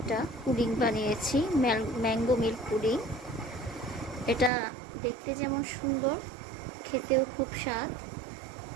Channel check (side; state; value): left; drops out; at 4.5 s